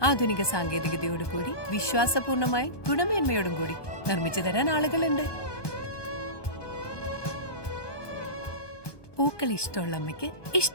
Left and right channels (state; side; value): late; right; 1.2 ms